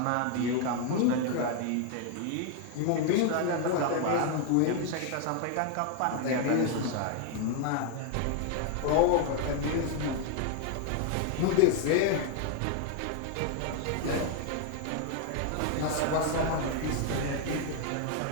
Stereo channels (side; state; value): both; different; correlation 0.01